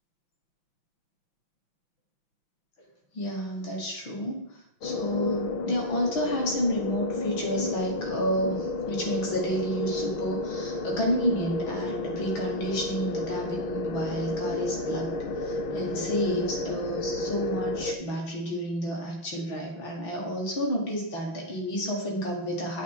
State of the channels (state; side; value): late; right; 5.9 ms